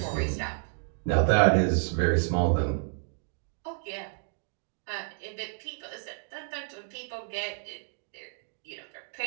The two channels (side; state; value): left; silent; 58 dB below the other